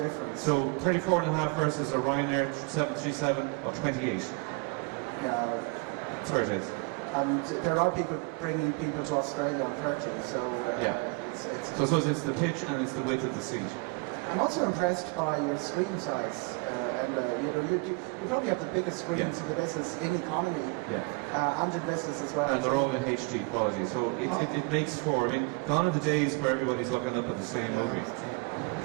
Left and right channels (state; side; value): quieter; left; 30.8 dB